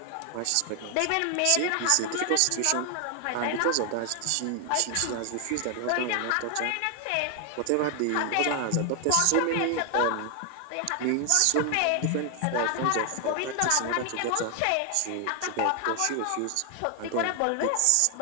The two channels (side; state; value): both; different; correlation 0.00